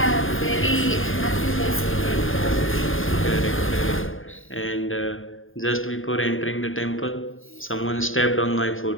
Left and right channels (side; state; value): right; late; 0.59 ms